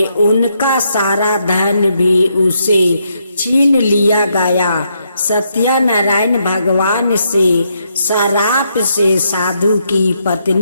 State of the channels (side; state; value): both; inverted; correlation -0.78